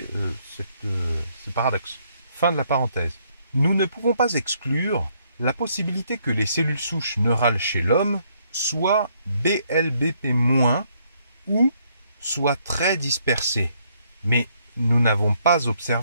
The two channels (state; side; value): inverted; both; correlation -0.70